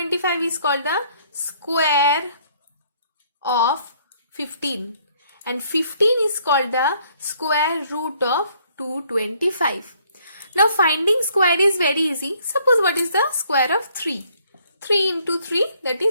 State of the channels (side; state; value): both; inverted; correlation -0.65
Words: is called the square of 15, and 15 is called the square root of 225. Now finding square is very easy. Suppose what is the square of 3? 3 into 3, that